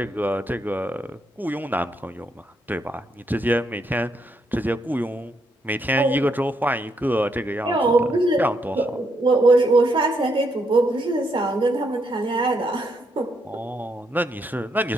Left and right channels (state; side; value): normal; both; correlation 0.77